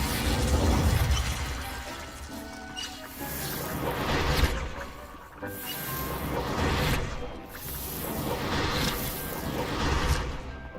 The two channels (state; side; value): identical; both; correlation 1.00